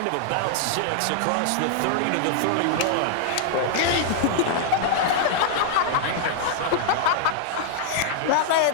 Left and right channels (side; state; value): both; different; correlation -0.01